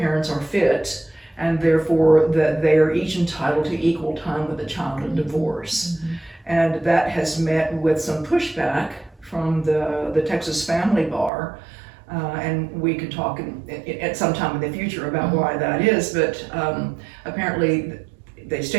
are fit, and therefore that they are each entitled to equal time with the child in divorce. And that has met with some pushback from the Texas Family Bar, and we could talk at some time in the future about why that is, but apparently the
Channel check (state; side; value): drops out; left; at 11.3 s